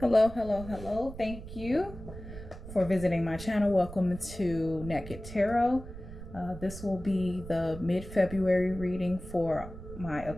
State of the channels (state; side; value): noise; right; rumble, 13 dB below the sound